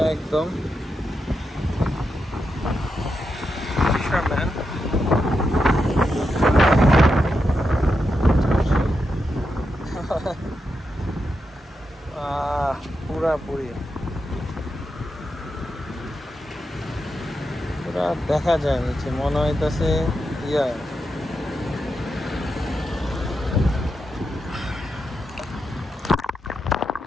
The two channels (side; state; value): both; normal; correlation 0.86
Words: একদম fisherman পুরাপুরি পুরা দেখা যায় নিচে মনে হইতেছে ইয়া